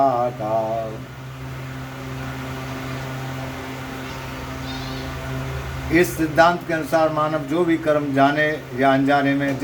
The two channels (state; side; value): identical; both; correlation 1.00